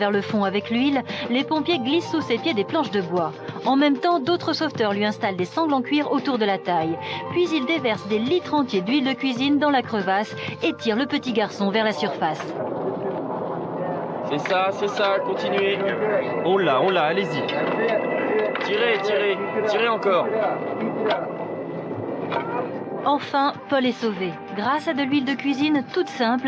le fond avec l'huile, les pompiers glissent sous ses pieds des planches de bois. En même temps, d'autres sauveteurs lui installent des sangles en cuir autour de la taille. Puis ils déversent des litres entiers d'huile de cuisine dans la crevasse et tirent le petit garçon vers la surface. C'est ça, continuez. On l'a, allez-y. Tirez encore. Enfin, Paul est sauvé. Grâce à de l'huile de cuisine toute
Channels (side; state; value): both; identical; correlation 1.00